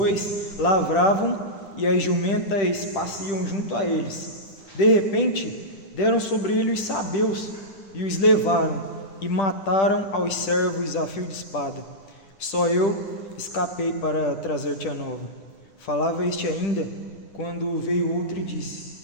lavravam e as jumentas pasciam junto a eles. De repente, deram sobre ele os sabeus e os levaram e mataram aos servos a fio de espada. Só eu escapei para trazer-te a nova. Falava este ainda, quando veio outro e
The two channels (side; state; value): right; late; 10 ms